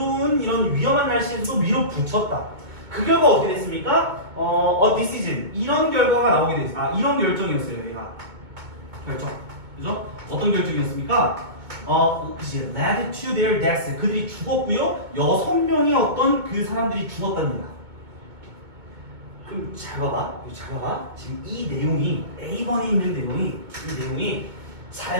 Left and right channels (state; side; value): late; left; 2.2 ms